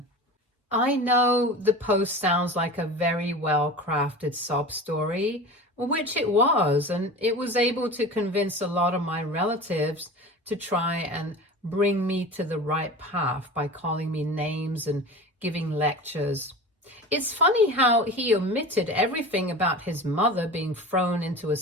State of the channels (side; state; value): both; normal; correlation 0.33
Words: I know the post sounds like a very well-crafted sob story, which it was, and it was able to convince a lot of my relatives to try and bring me to the right path by calling me names and giving lectures. It's funny how he omitted everything about his mother being thrown into a